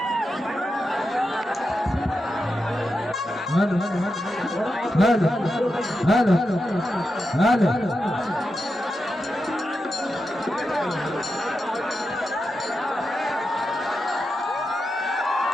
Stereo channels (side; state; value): both; normal; correlation 0.88